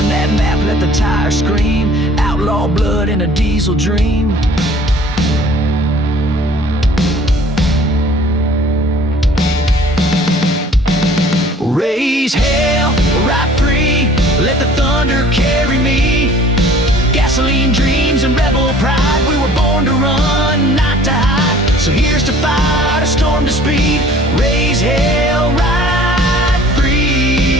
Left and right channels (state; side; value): normal; both; correlation 0.52